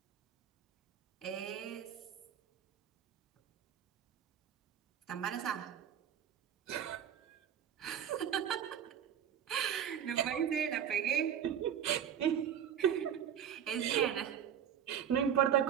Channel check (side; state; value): left; quieter; 9.2 dB